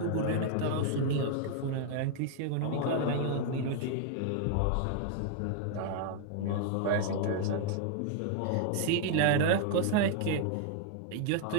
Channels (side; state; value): both; different; correlation 0.00